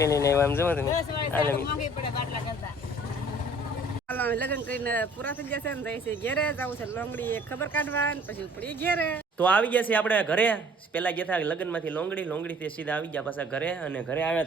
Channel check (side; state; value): both; normal; correlation 0.54